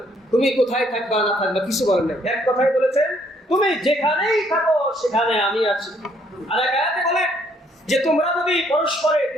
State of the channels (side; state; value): both; normal; correlation 0.67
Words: তুমি কোথায় থাকবা না থাকবা, কিছু বলেন না। এক কথাই বলেছেন তুমি যেখানেই থাকো সেখানে আমি আছি। আর এক আয়াতে বলে যে তোমরা যদি পরস্পরে